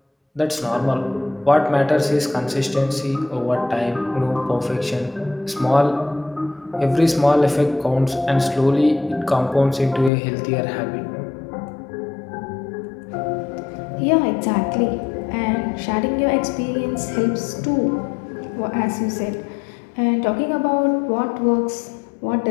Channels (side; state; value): right; drops out; at 10.1 s